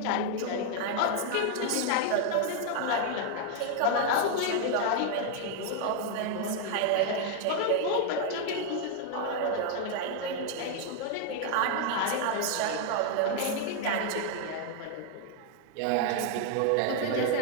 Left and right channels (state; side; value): different; both; correlation 0.00